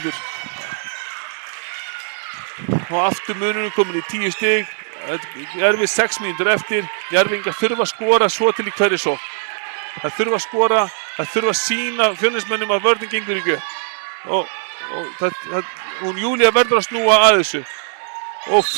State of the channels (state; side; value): silent; left; digital silence